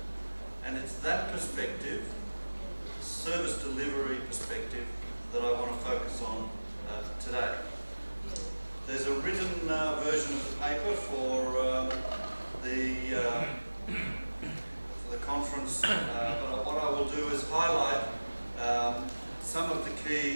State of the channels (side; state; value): both; inverted; correlation -1.00